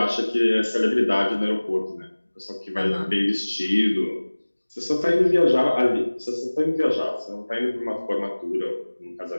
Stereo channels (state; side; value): inverted; both; correlation -1.00